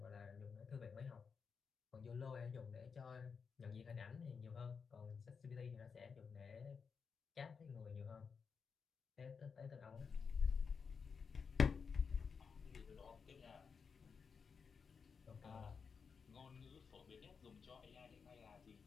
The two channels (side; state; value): right; quieter; 5.7 dB